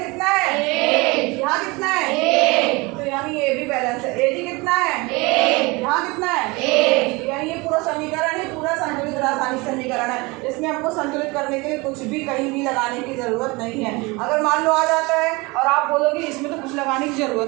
है, यहाँ कितना है, तो यानी ये भी बैलेंस है। Ag कितना है, यहाँ कितना है, यानी ये पूरा समीकरण है, पूरा संतुलित रासायनिक समीकरण है। इसमें हमको संतुलित करने के लिए कुछ भी कहीं भी लगाने की जरूरत नहीं है। अगर मान लो आ जाता है और आप बोलोगे इसमें तो कुछ लगाने की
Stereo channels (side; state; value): left; quieter; 25.0 dB